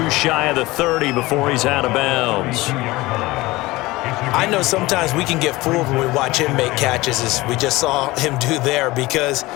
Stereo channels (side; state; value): right; quieter; 20.1 dB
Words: shy of the 30 before he's out of bounds. I know sometimes we can get fooled when we watch him make catches, as we just saw him do there, because